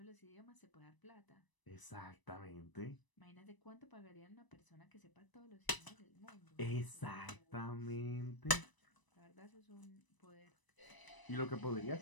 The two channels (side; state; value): right; late; 1.0 ms